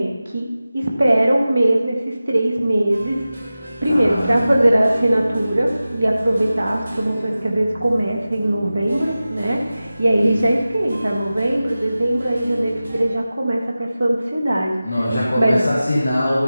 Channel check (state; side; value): inverted; both; correlation -0.95